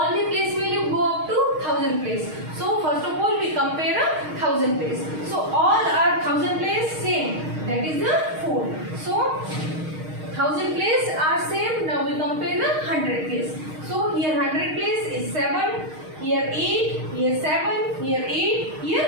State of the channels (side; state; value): left; late; 6.4 ms